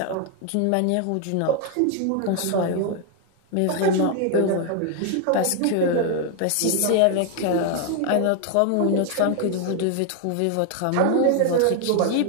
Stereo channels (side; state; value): both; different; correlation 0.01